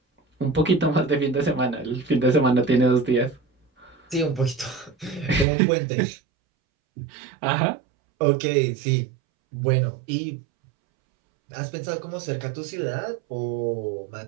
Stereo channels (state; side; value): drops out; left; at 5.5 s